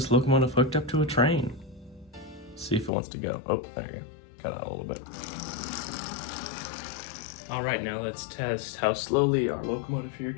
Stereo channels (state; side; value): drops out; right; at 2.9 s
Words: locomotive hooked up to a train. See if it wants to go. Oh, there you go. Cut out a little bit. All right, now let's test how slowly our locomotive here